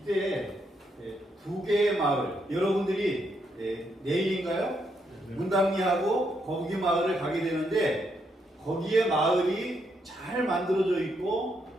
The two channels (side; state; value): both; normal; correlation 0.77